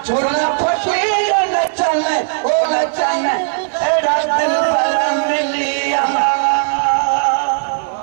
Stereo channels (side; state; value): left; silent; digital silence